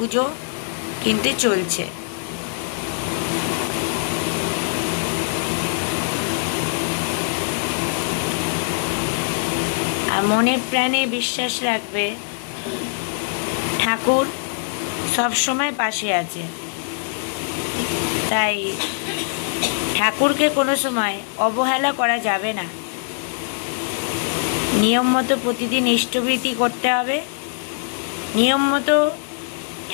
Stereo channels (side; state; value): right; silent; digital silence